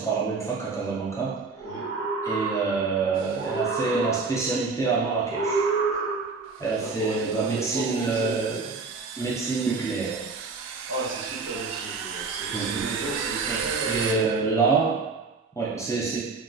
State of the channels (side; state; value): left; quieter; 4.2 dB